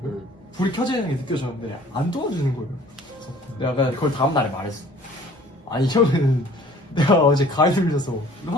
불이 켜져 있는 게 느껴졌는데 안 도와주는 거예요. 그래서 내가 그걸 다음날에 말했어. 아니 형은 내가 어제 가위 눌려서 이거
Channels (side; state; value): both; normal; correlation 0.52